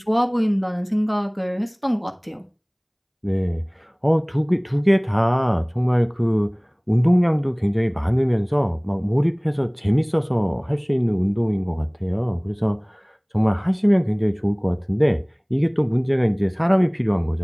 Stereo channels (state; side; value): identical; both; correlation 1.00